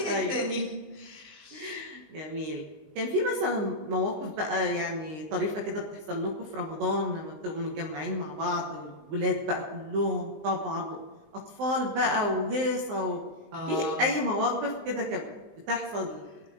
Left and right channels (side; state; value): left; late; 19 ms